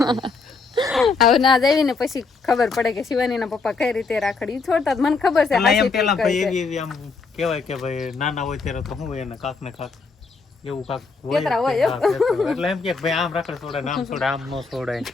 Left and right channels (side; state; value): right; quieter; 4.4 dB